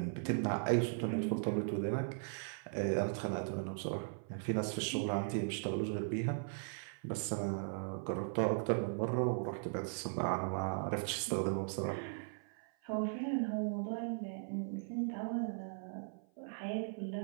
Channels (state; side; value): silent; left; 52 dB below the other